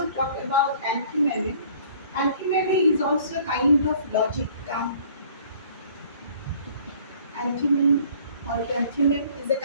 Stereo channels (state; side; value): inverted; both; correlation -0.54